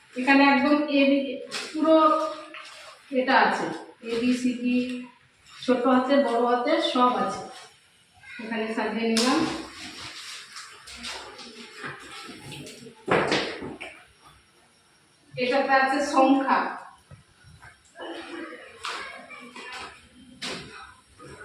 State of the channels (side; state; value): both; identical; correlation 1.00